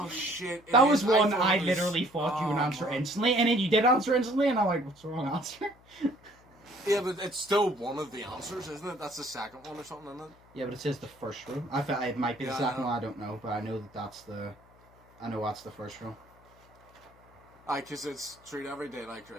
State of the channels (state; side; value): noise; left; hum, 28 dB below the sound